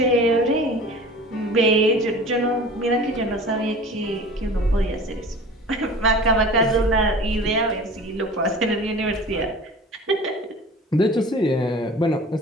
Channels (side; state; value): both; normal; correlation 0.41